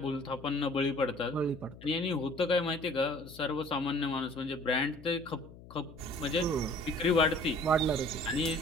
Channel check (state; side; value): noise; left; hum, 18 dB below the sound